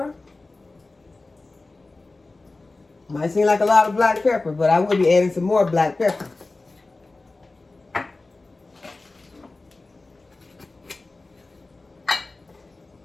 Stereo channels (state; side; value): quieter; right; 3.3 dB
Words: Might seem like a lot of black pepper, but I will be adding some more black pepper.